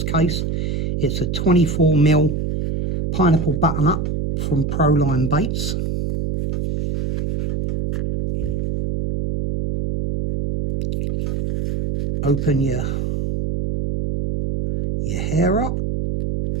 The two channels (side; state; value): right; noise; hum, 1 dB below the sound